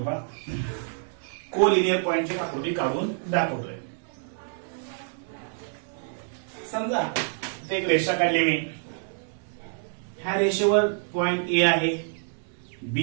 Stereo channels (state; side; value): silent; left; digital silence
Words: पहा. कोलिनियर पॉइंटची आकृती काढून दाखवतोय. समजा इथे एक रेषा काढली मी. ह्या रेषेवर पॉइंट ए आहे,